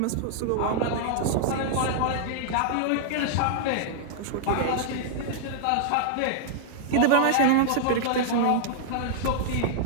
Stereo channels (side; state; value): both; different; correlation -0.01